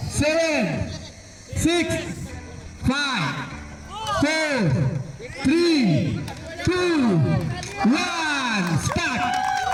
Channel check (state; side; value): identical; both; correlation 1.00